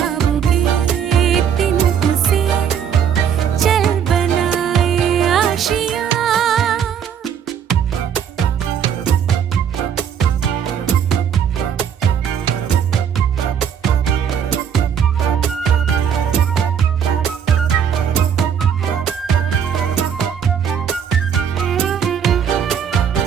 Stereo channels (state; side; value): quieter; left; 8.1 dB